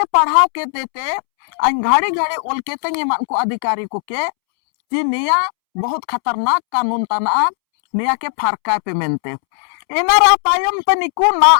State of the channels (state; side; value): silent; right; 69 dB below the other